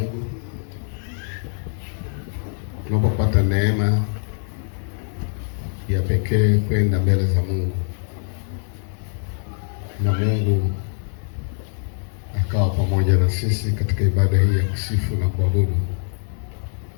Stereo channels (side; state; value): right; silent; digital silence